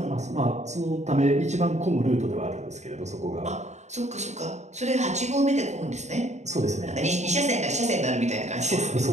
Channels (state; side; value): late; left; 0.33 ms